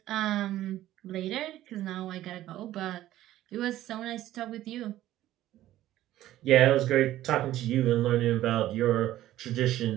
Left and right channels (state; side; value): quieter; left; 14.0 dB